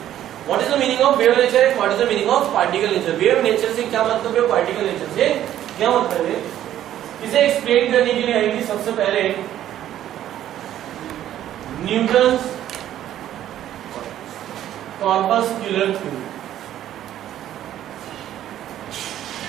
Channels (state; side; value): quieter; left; 11.9 dB